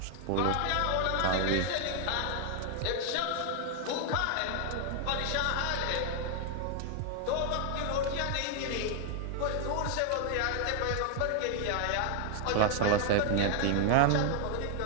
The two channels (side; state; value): both; different; correlation 0.00